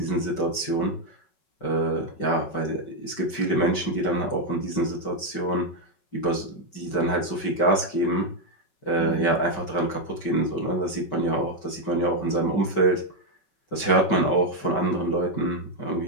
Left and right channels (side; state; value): right; late; 5.2 ms